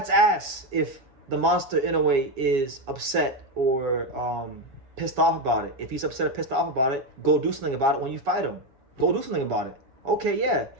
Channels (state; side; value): late; left; 7.3 ms